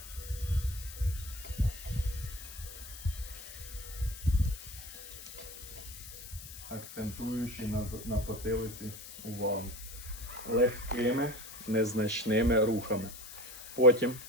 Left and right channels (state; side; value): noise; left; hiss, 13 dB below the sound